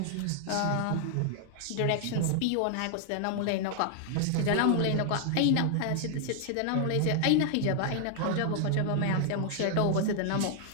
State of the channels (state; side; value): different; both; correlation 0.00